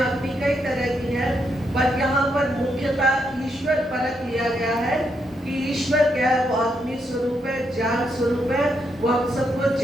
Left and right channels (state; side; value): normal; both; correlation 0.79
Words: कई तरह की है, पर यहाँ पर मुख्यतः ईश्वर परक लिया गया है कि ईश्वर क्या है? वो अग्नि स्वरूप है, ज्ञान स्वरूप है। वो हम सबको